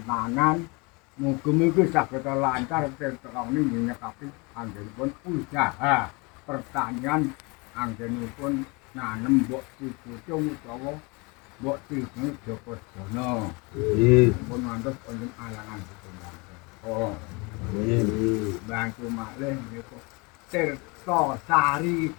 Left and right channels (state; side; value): quieter; right; 28.3 dB